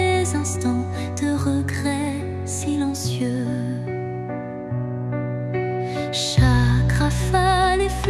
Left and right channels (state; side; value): identical; both; correlation 1.00